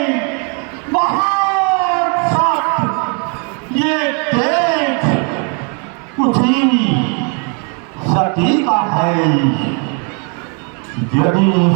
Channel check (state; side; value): quieter; left; 37.3 dB